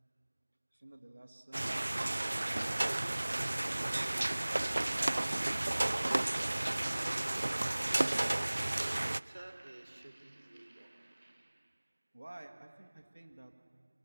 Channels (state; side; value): inverted; both; correlation -1.00